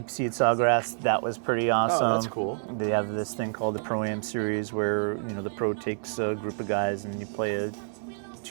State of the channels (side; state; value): left; silent; digital silence